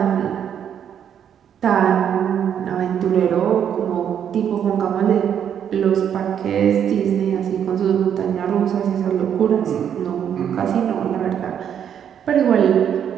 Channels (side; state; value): left; quieter; 8.8 dB